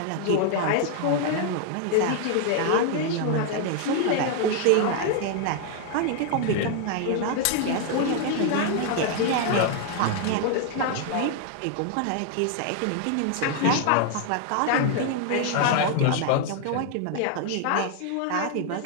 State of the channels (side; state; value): both; different; correlation 0.00